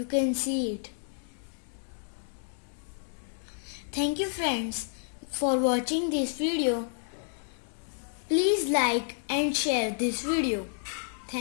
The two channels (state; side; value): silent; right; digital silence